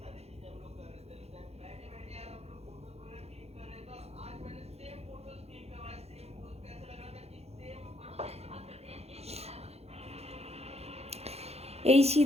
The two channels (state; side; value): late; left; 0.30 ms